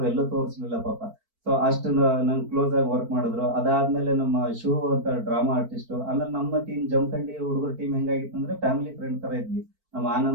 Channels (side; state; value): left; late; 4.5 ms